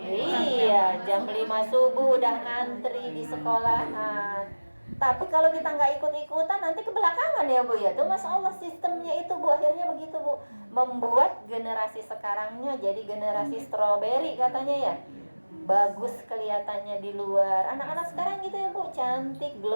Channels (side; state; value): both; inverted; correlation -1.00